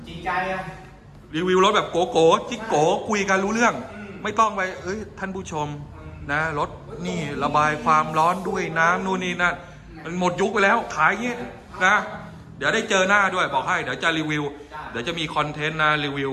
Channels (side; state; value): both; identical; correlation 1.00